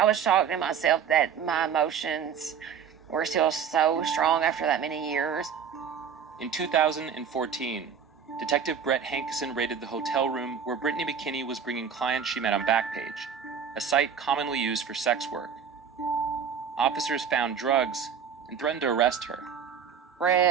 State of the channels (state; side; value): quieter; left; 7.2 dB